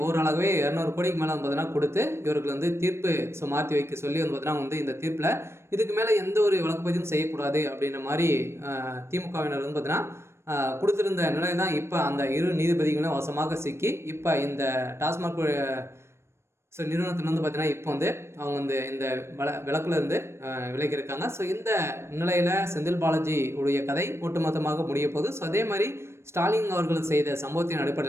ஓரளவே 200 கோடிக்கு மேலே பார்த்தீங்கன்னா கொடுத்து இவர்கள் தீர்ப்பு மாற்றி வைக்க சொல்லி பார்த்தீங்கன்னா இந்த தீர்ப்பில் இதுக்கு மேலே எந்த ஒரு வழக்கு பதிவும் செய்யக்கூடாது அப்படின்ற மாதிரி திமுகவினர் பார்த்தீங்கன்னா கொடுத்துருந்த நிலை தான் இப்போ அந்த 2 நீதிபதிகளும் வசமாக சிக்கி இப்போ இந்த டாஸ்மாக் நிறுவனத்தில் பார்த்தீங்கன்னா இப்போ அவங்க இந்த விளக்குலேருந்து விலகியிருக்காங்க. இந்த நிலையில் செந்தில் பாலாஜி உடைய கதை ஒட்டுமொத்தமாக முடிய போகுது. அதே மாதிரி ஸ்டாலின் அவர்கள் செய்த சம்பவத்தின்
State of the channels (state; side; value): late; left; 0.13 ms